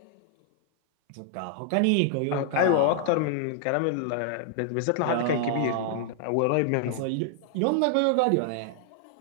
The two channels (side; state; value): both; different; correlation 0.00